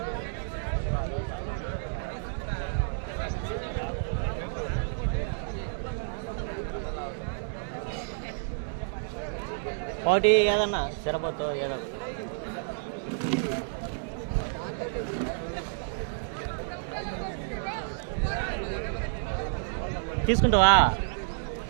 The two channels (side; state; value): left; silent; digital silence